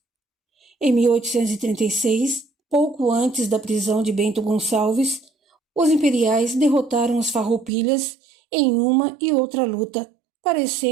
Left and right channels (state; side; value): drops out; left; at 7.7 s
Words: Em 1836, pouco antes da prisão de Bento Gonçalves, os imperiais derrotaram os farroupilhas em uma e outra luta,